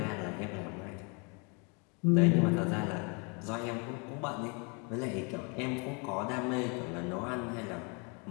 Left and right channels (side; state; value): right; quieter; 33.7 dB